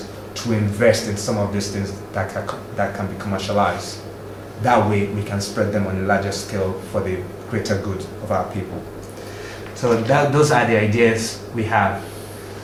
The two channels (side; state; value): both; identical; correlation 1.00